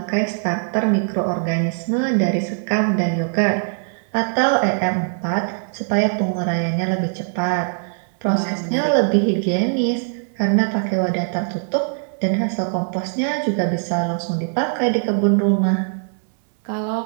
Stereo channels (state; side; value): silent; left; 59 dB below the other